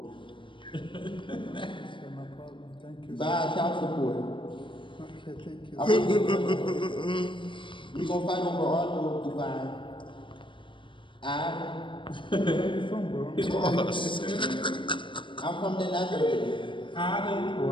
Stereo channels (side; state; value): right; late; 0.24 ms